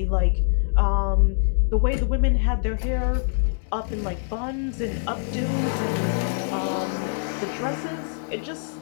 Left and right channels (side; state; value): right; silent; digital silence